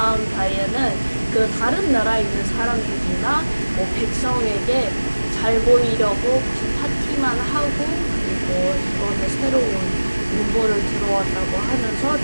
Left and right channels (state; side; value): inverted; both; correlation -1.00